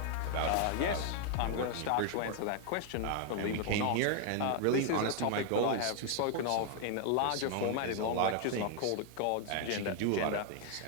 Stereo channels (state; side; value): different; both; correlation 0.00